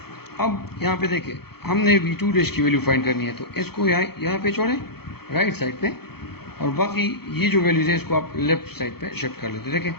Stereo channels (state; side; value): late; right; 0.96 ms